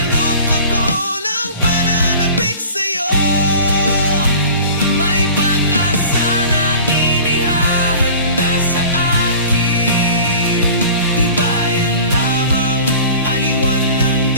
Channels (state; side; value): inverted; both; correlation -0.43